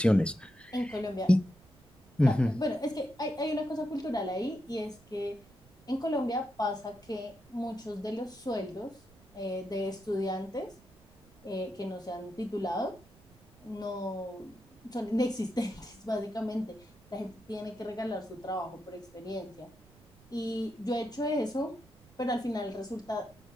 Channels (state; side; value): noise; right; rumble, 26 dB below the sound